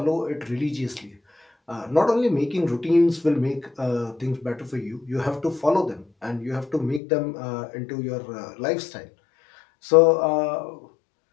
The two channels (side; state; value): right; drops out; at 7.0 s